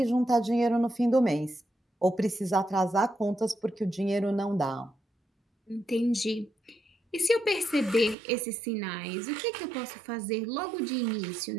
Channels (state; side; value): drops out; left; at 8.2 s